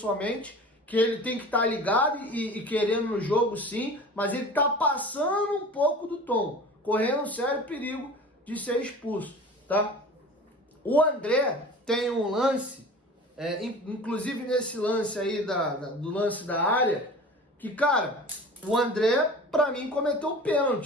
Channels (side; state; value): both; normal; correlation 0.39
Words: que ele tem que estar ligado e querendo no jogo sim, mas ele tá passando um pouco do tom, correndo um sério perigo de ser expulso, tá? O André tem um lance, inclusive nesse lance aí, do lance da área, que, cara, o André, pra mim, cometeu